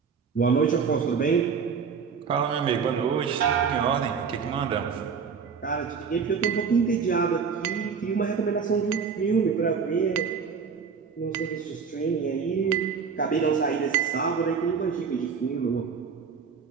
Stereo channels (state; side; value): quieter; left; 6.0 dB